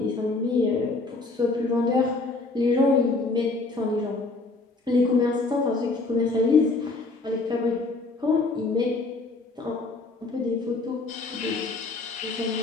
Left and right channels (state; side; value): quieter; right; 3.5 dB